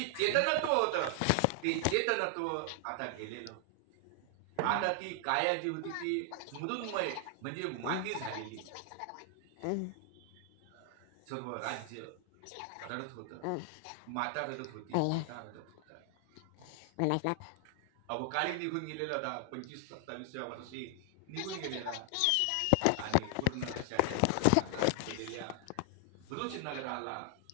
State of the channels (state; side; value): different; both; correlation 0.00